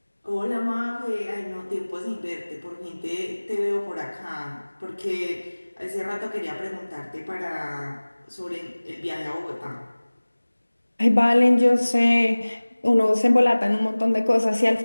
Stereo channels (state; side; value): inverted; both; correlation -1.00